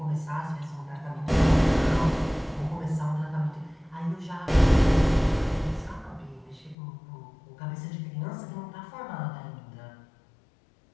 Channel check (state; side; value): drops out; right; at 6.8 s